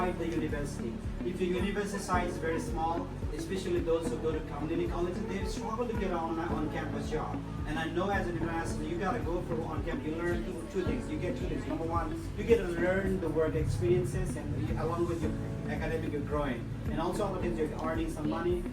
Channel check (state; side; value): identical; both; correlation 1.00